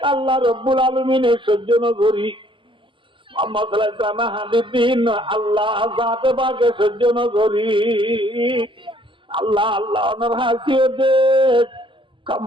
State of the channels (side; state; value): left; late; 0.25 ms